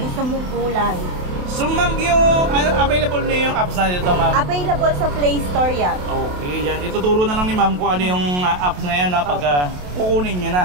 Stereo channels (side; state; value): left; late; 28 ms